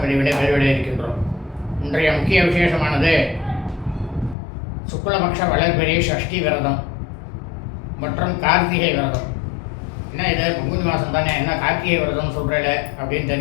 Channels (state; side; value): drops out; right; at 4.4 s